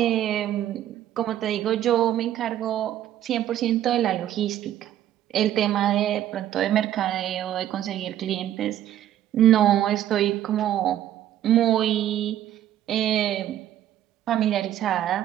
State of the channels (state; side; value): quieter; left; 11.9 dB